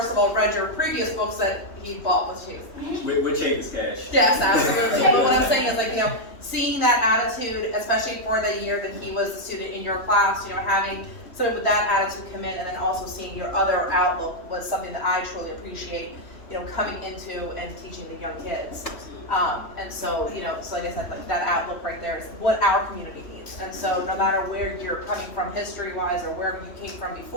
of all, read your previous books that he bought with Chase. With Chase Cash. Yes, absolutely. But what I'm saying is, like, you know, seeing that attitude, especially for the year that he was the student in your class, you know, having someone with that attitude come in, and then also seeing your other outlook was something that I truly appreciate, you know, coming into and teaching the young kids. And so, you know, so like I said, like that outlook right there is what our community needs. And so no matter where you're coming from history-wise or wherever you came from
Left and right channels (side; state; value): right; late; 3.1 ms